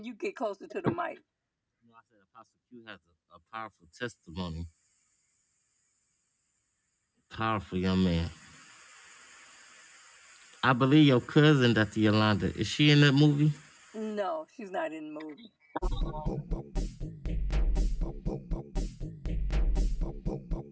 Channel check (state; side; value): identical; both; correlation 1.00